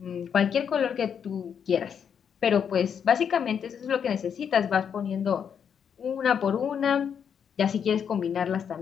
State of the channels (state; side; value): quieter; right; 7.6 dB